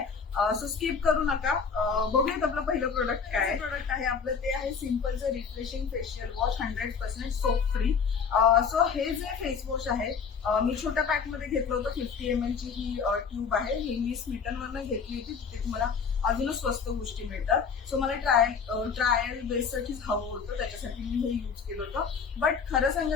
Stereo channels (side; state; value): right; quieter; 6.0 dB